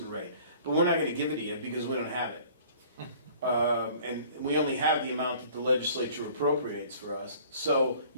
rate, but we're not going to give it to you because we don't have it. And we only have the amount that the legislature appropriates for us. So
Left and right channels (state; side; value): inverted; both; correlation -0.51